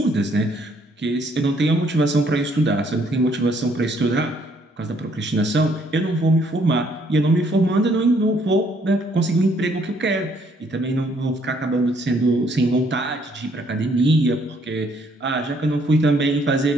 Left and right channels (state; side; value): normal; both; correlation 0.66